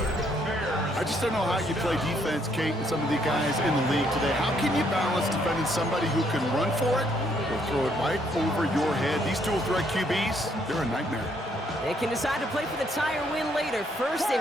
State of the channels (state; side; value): normal; both; correlation 0.70